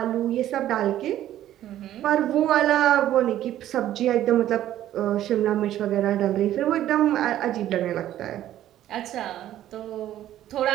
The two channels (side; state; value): left; quieter; 12.6 dB